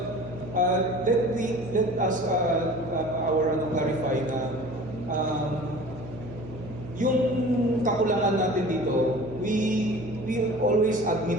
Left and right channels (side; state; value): right; noise; hum, 13 dB below the sound